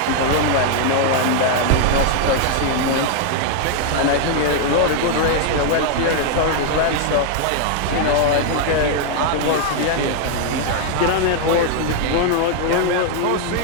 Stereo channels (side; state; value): both; different; correlation 0.00